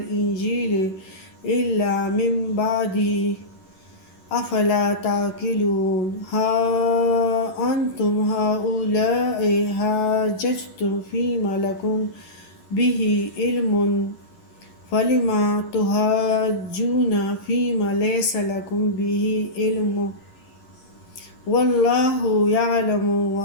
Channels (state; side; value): late; right; 11 ms